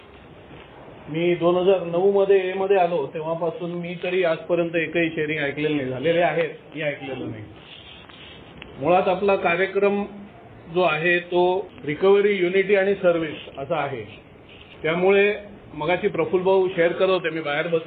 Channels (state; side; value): identical; both; correlation 1.00